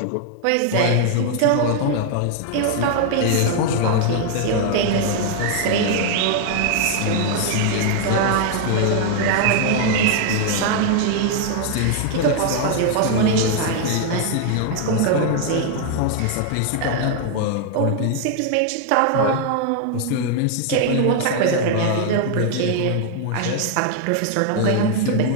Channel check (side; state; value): both; different; correlation 0.00